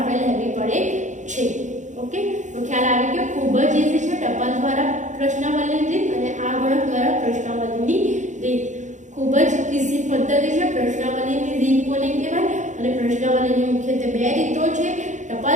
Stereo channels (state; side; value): late; left; 0.35 ms